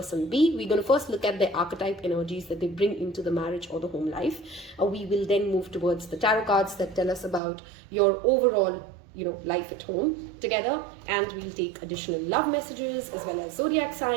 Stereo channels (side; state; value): left; drops out; at 7.4 s